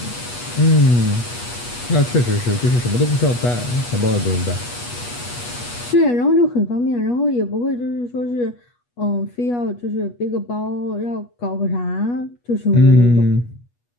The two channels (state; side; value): late; right; 8.3 ms